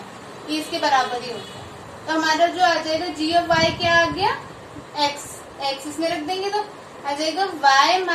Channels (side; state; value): both; identical; correlation 1.00